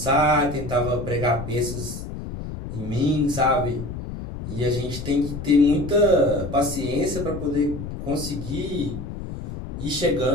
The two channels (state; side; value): noise; left; rumble, 8 dB below the sound